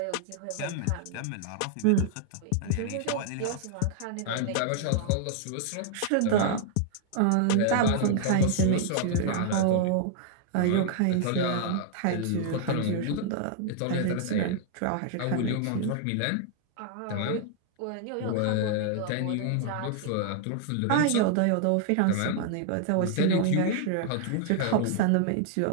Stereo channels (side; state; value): both; different; correlation -0.01